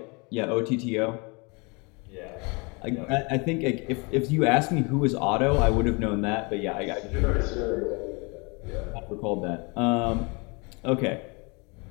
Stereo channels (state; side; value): quieter; right; 30.2 dB